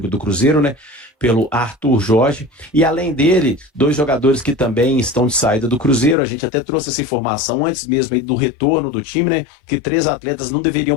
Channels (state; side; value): drops out; right; at 6.2 s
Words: do Cruzeiro, né? Pelo Arthur Jorge, e além dele, 2 jogadores que também estão de saída do Cruzeiro. A gente até trouxe essa informação antes mesmo aí do retorno do time, né, que 3 atletas não